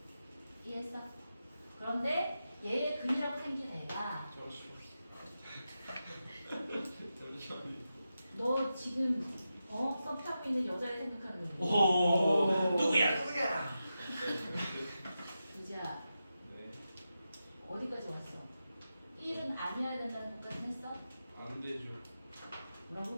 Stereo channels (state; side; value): inverted; both; correlation -0.90